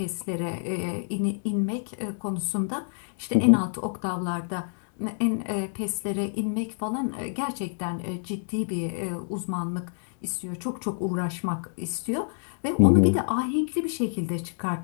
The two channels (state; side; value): silent; right; digital silence